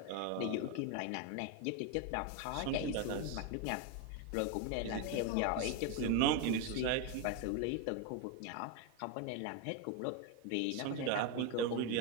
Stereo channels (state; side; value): different; both; correlation 0.02